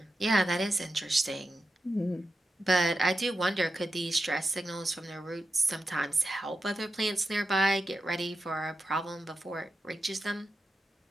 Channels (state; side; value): normal; both; correlation 0.90